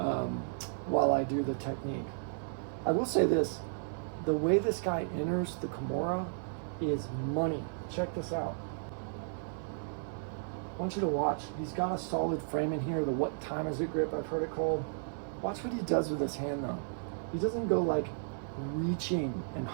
while I do the technique. I will say this, the way this guy enters the Kimura is money. Check this out. I want you to watch. He's got a solid frame in here, the what time is it grip, I've heard it called. Watch what he does with his hand though. He doesn't go like reaching and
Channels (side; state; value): left; silent; digital silence